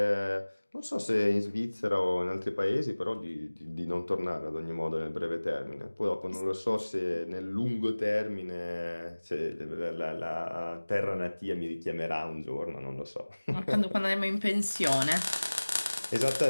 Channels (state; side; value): inverted; both; correlation -1.00